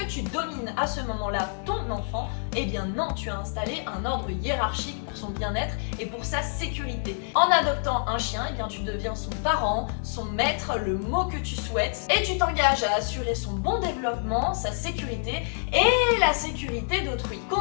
tu domines à ce moment-là ton enfant? Non, tu as installé un ordre hiérarchique pour son bien-être et pour sa sécurité. En adoptant un chien, tu deviens son parent, son maître, le mot que tu souhaites, et tu t'engages à assurer son bon développement, sa sécurité et la sécurité d'autrui.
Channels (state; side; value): silent; right; digital silence